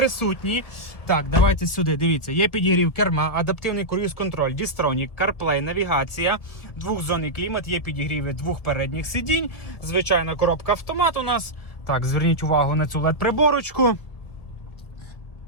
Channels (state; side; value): late; right; 1.7 ms